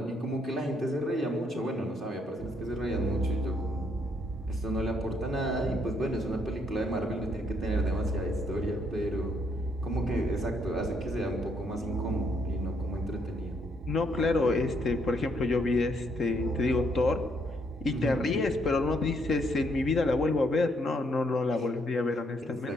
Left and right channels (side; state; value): both; normal; correlation 0.72